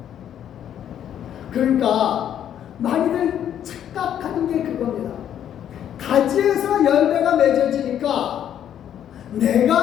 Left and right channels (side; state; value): right; quieter; 10.0 dB